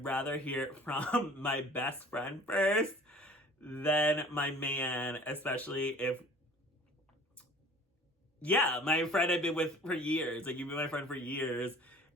rather hear it from my best friend first than my man, especially if, yeah, my friend I've been with for years. Like, you've been my friend for years,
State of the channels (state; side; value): normal; both; correlation 0.48